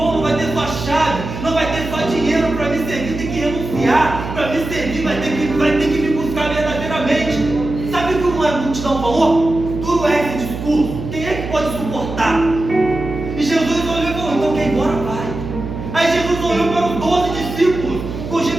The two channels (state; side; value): noise; right; hum, 8 dB below the sound